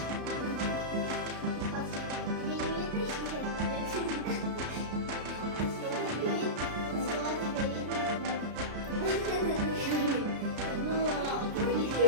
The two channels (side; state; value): left; late; 33 ms